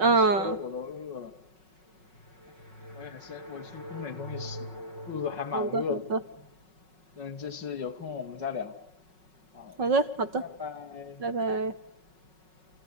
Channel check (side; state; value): left; late; 5.4 ms